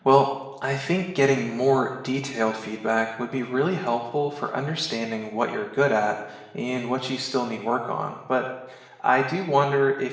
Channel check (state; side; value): identical; both; correlation 1.00